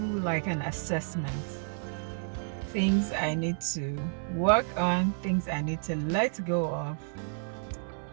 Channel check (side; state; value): left; silent; 57 dB below the other